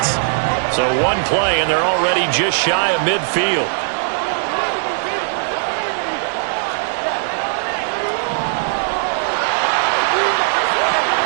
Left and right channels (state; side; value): silent; left; digital silence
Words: So one play, and they're already just shy of midfield.